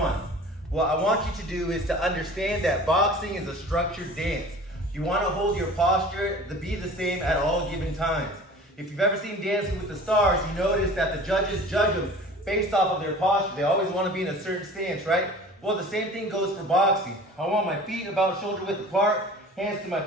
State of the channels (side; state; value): both; normal; correlation 0.42